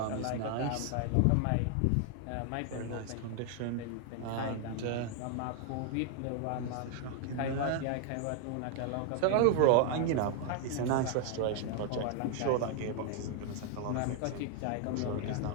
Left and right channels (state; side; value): different; both; correlation 0.00